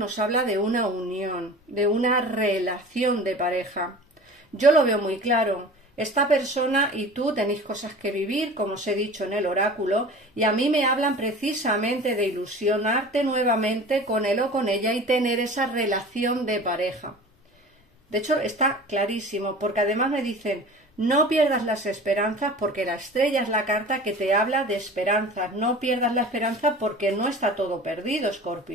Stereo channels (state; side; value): normal; both; correlation 0.39